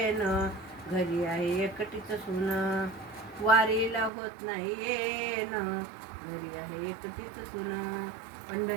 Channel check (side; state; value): left; drops out; at 4.1 s